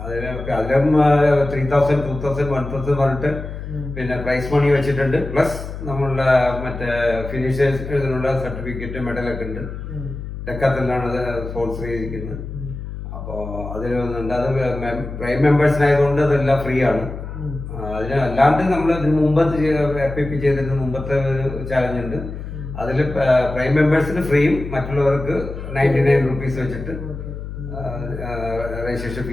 അതിലും 3,000, 2,000, 1,000 പറഞ്ഞിട്ട് പിന്നെ പ്രൈസ് മണി വെച്ചിട്ടുണ്ട്. പ്ലസ് നമ്മളുടെ മറ്റേ ഫിനിഷേഴ്സിനുള്ള സർട്ടിഫിക്കറ്റ് മെഡലൊക്കെ ഉണ്ട്. ഡെക്കാത്തലാണ് അത് സ്പോൺസർ ചെയ്തിരിക്കുന്നത്. അപ്പോൾ അതിൽ വന്നിട്ടുണ്ട്. അത് പ്രൈം മെമ്പേഴ്സിനായതുകൊണ്ട് അതെല്ലാം ഫ്രീ ആണ്. അതിന് അല്ലാണ്ട് നമ്മൾ ഇതിന് മുമ്പ് FIP ചെയ്തിരുന്ന മുമ്പത്തെ ഒരു ചാലഞ്ച് ഉണ്ട്. അതിൽ പ്രൈം മെമ്പേഴ്സിന് ഫ്രീയും മറ്റുള്ളവർക്ക് 99 റുപ്പീസ് വെച്ചിട്ട് രജിസ്ട്രേഷൻ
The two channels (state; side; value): noise; left; hum, 9 dB below the sound